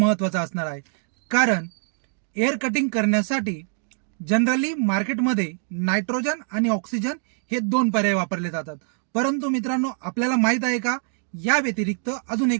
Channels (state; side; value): silent; left; 55 dB below the other